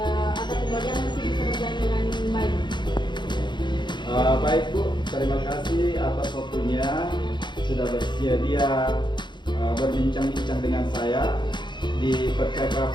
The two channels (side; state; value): right; late; 0.22 ms